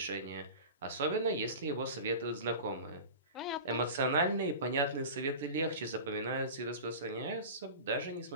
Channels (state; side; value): inverted; both; correlation -0.33